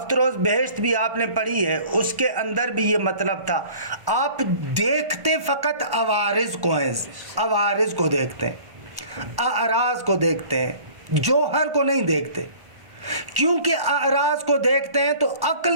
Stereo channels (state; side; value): late; left; 1.5 ms